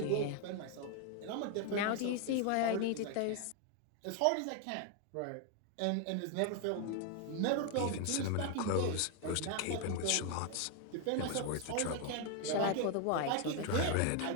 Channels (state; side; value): different; both; correlation 0.00